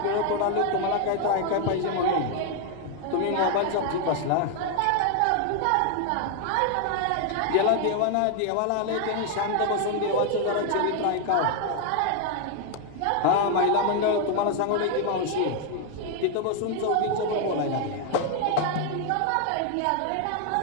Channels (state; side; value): different; both; correlation 0.01